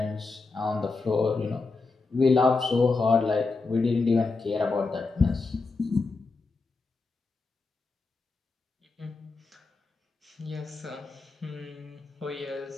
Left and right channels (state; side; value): quieter; right; 4.0 dB